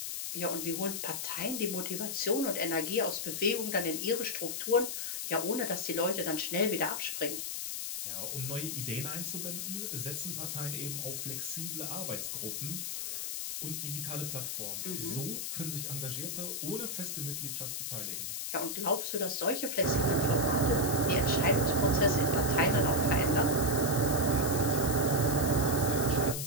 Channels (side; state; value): left; noise; hiss, 3 dB below the sound